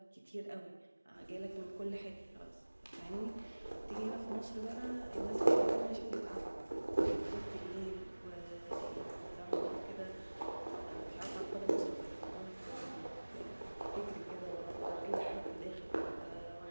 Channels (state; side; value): inverted; both; correlation -1.00